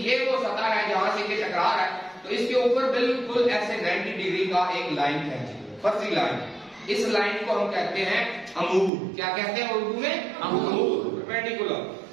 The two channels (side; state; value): left; drops out; at 8.9 s